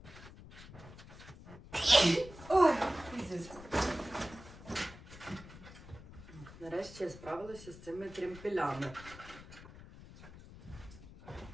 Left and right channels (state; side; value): noise; left; rumble, 17 dB below the sound